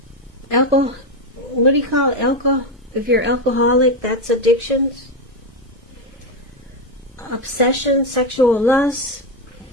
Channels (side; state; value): both; normal; correlation 0.09